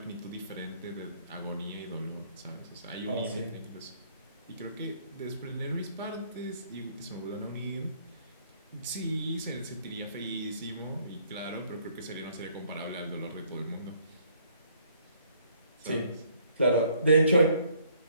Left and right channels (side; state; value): both; inverted; correlation -0.64